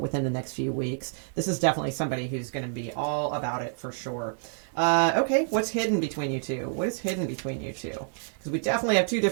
the next few weeks. This is definitely somebody who's going to be all about it for sure. Okay, what's hidden between you two? What is hidden between you two? Because we definitely have two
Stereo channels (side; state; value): left; silent; 59 dB below the other